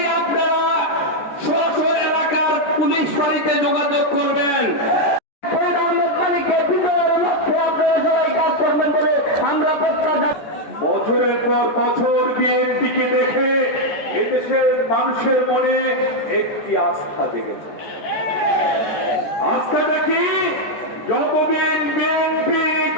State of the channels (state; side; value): late; right; 14 ms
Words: আপনারা সরাসরি এলাকার পুলিশ বাড়িতে যোগাযোগ করবেন। বছরের পর বছর বিএনপিকে দেখে এদেশের মানুষের মনে একটি আস্থা জেগেছে। আস্থাটা কি? যতদিন বিএনপি